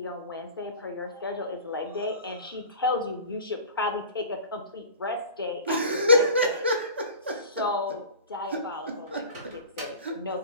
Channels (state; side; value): inverted; both; correlation -0.39